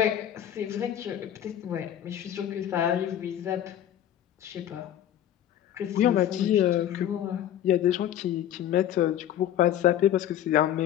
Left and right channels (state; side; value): quieter; right; 11.2 dB